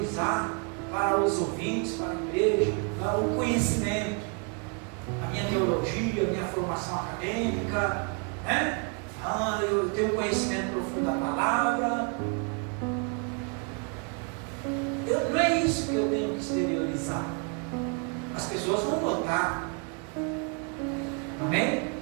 para os ouvintes, para a igreja, para o conhecimento, a minha teologia, a minha formação acadêmica, né? Eu tenho um conhecimento profundo da palavra. Não é isso que eu tenho que exteriorizar. As pessoas vão votar. Amém?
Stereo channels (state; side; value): quieter; left; 37.4 dB